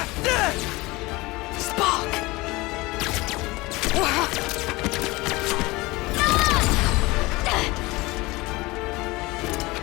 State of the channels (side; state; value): right; quieter; 22.0 dB